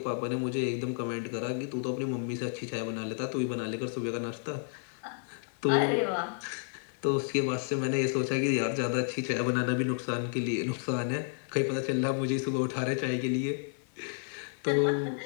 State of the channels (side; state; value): right; silent; 57 dB below the other